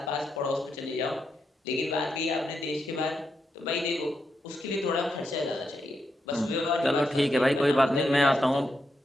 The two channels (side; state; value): both; normal; correlation 0.83